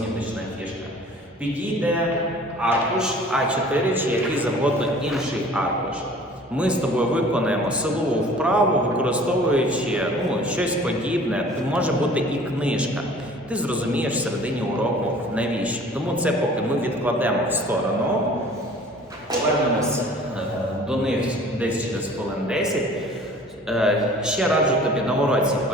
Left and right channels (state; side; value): normal; both; correlation 0.48